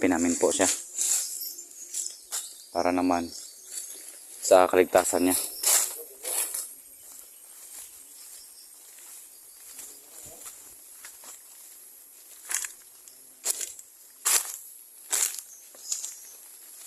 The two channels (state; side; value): identical; both; correlation 1.00